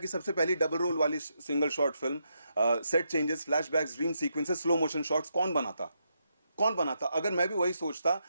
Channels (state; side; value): inverted; both; correlation -0.81